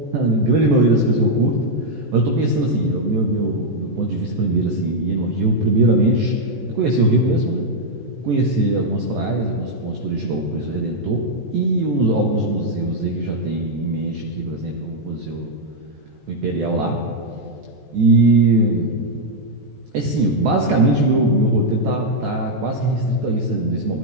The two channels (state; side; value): late; left; 14 ms